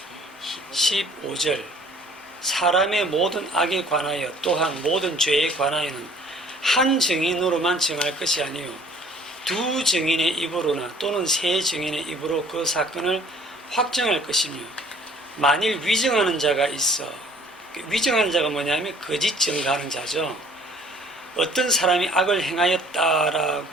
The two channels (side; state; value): both; normal; correlation 0.55